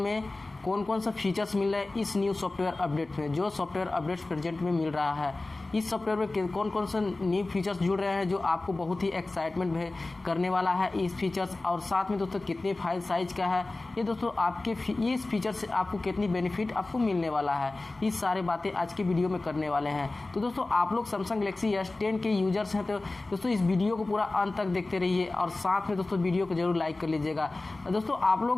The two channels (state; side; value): quieter; right; 3.1 dB